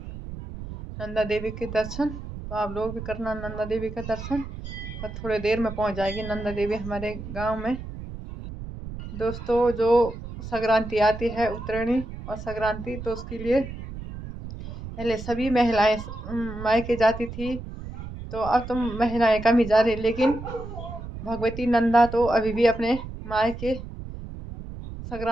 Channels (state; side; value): noise; right; rumble, 10 dB below the sound